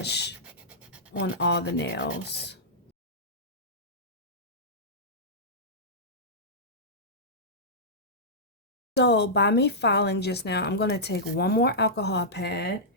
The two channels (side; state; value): both; normal; correlation -0.14